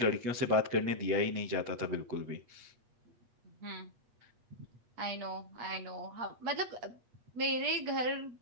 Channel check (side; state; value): left; late; 8.4 ms